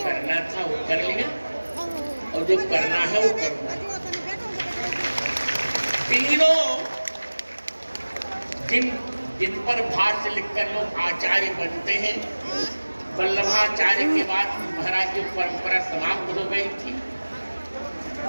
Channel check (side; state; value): both; inverted; correlation -1.00